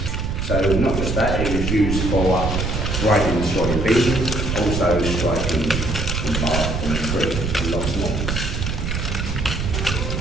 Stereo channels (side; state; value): right; noise; rumble, 2 dB below the sound